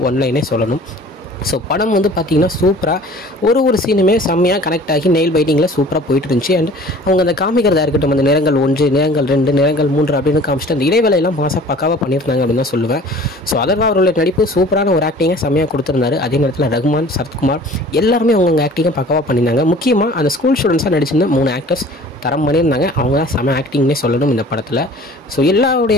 ஒன்லைனே சொல்லணும். ஸோ படம் வந்து பார்த்திங்கன்னா சூப்பராக ஒரு சீனுமே செம்மையாக கனெக்ட் ஆகி நெயில் பைட்டிங்கில் சூப்பராக போயிட்டு இருந்துச்சு. அண்ட் அவங்க அந்த காமிக்கிறதா இருக்கட்டும், அந்த நிறங்கள் 1, நிறங்கள் 2, நிறங்கள் 3 அப்படின்னு காமிச்சிட்டு அந்த இடைவேளையெல்லாம் மாதம் பக்காவாக பண்ணியிருந்தாங்க அப்படின்னு தான் சொல்லுவேன். ஸோ அதர்வா அவர்களுடைய நடிப்பு சூப்பரான ஒரு ஆக்டிங்கை செம்மையாக கொடுத்துருந்தாரு. அதே நேரத்தில் ரகுமான், சரத்குமார் எல்லாருமே அவங்க ஆக்டிங்கை பக்காவாக பண்ணியிருந்தாங்க. முக்கியமாக அந்த ஸ்கூல் ஸ்டூடெண்ட்ஸாக நடிச்சிருந்த 3 ஆக்டர்ஸ் தரம் பண்ணியிருந்தாங்க. அவங்க தான் செம்ம ஆக்டிங்னே சொல்லணும் இந்த படத்தில். ஸோ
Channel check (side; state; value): both; normal; correlation 0.47